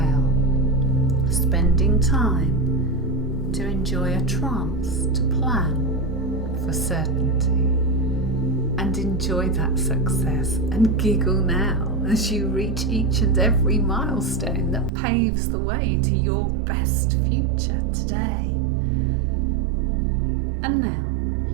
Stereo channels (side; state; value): left; drops out; at 14.9 s